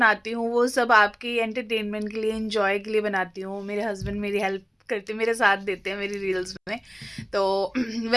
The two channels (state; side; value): identical; both; correlation 1.00